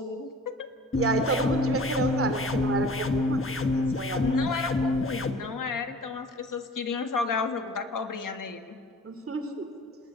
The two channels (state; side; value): normal; both; correlation 0.45